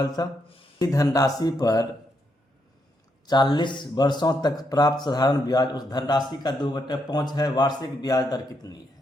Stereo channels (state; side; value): normal; both; correlation 0.79